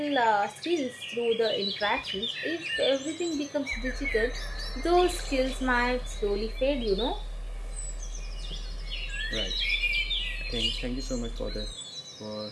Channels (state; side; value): identical; both; correlation 1.00